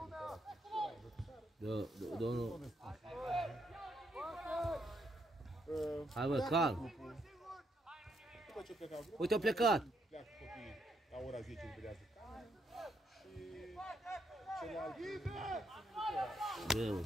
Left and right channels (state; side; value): normal; both; correlation 0.76